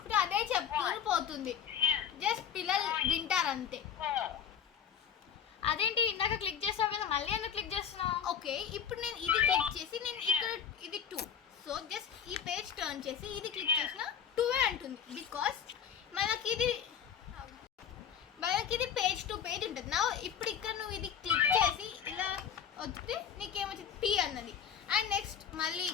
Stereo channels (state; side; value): quieter; right; 8.1 dB